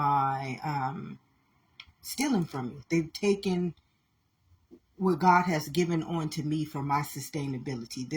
from me. They've taken what God has given on to me for my sustainability.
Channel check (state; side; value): identical; both; correlation 1.00